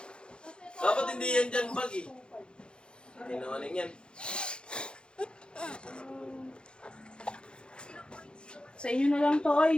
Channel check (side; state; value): right; late; 0.052 ms